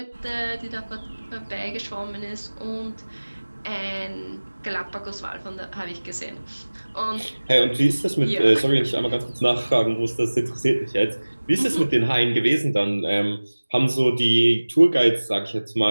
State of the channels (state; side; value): inverted; both; correlation -1.00